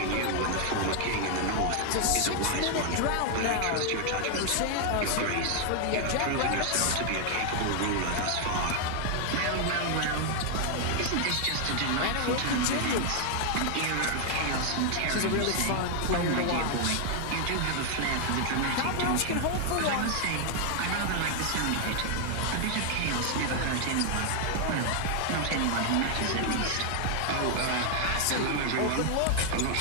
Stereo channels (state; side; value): different; both; correlation 0.00